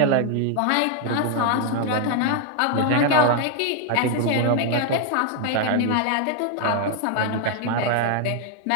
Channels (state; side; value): different; both; correlation 0.00